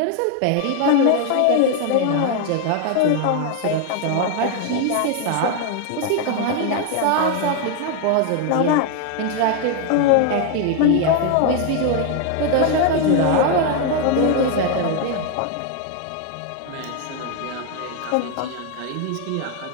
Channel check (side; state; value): both; different; correlation 0.01